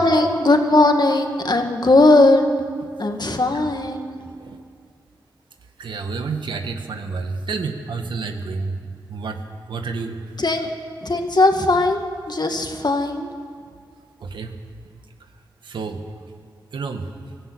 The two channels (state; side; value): normal; both; correlation 0.75